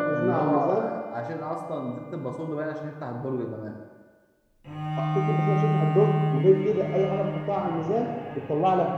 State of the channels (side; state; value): both; identical; correlation 1.00